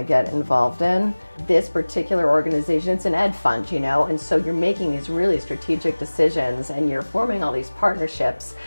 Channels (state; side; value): inverted; both; correlation -1.00